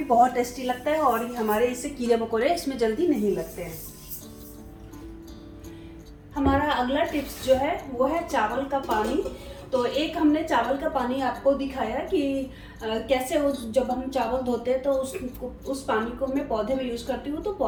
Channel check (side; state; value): both; identical; correlation 1.00